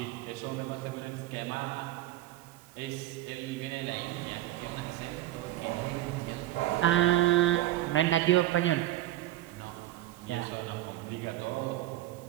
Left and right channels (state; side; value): quieter; left; 15.1 dB